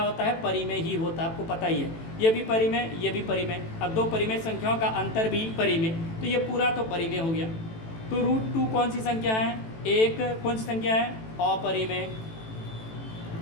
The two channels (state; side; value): late; right; 18 ms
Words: होता है? परिमेय ही होता है, आपको पता ही है। ये भी परिमेय, ये भी परिमेय, अब दो परिमेय संख्याओं का अंतर भी परिमेय, तो ये पूरा तो परिमेय हो गया। तो √2 कौन सी संख्या है? एक कौन सी संख्या है? अपरिमेय।